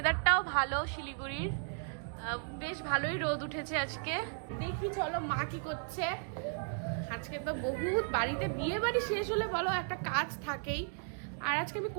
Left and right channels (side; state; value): left; silent; 54 dB below the other